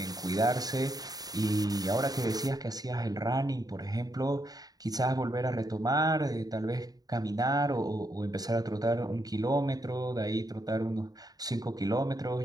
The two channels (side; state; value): left; late; 0.18 ms